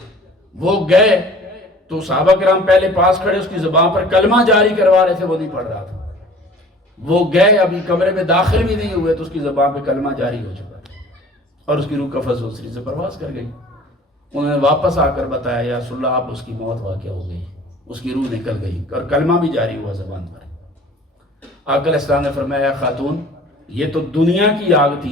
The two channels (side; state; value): both; normal; correlation 0.47